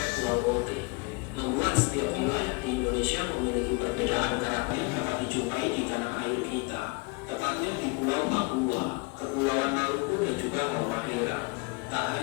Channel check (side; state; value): right; quieter; 29.3 dB